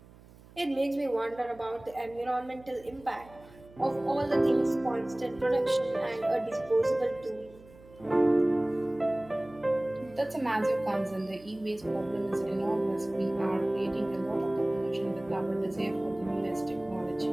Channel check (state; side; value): noise; right; hum, 23 dB below the sound